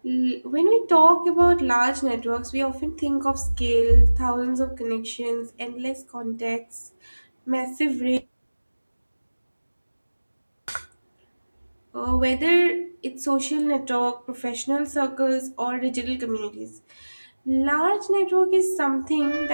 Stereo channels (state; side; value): inverted; both; correlation -1.00